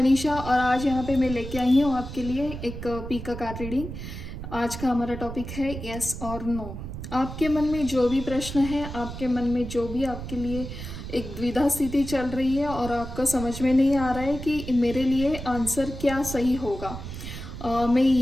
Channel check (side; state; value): right; noise; rumble, 9 dB below the sound